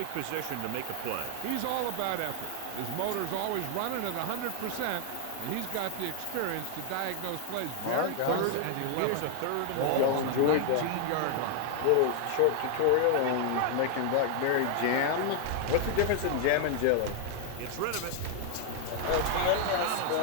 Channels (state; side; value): different; both; correlation 0.00